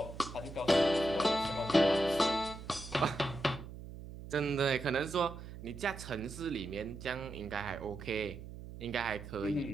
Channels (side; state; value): right; noise; hum, 12 dB below the sound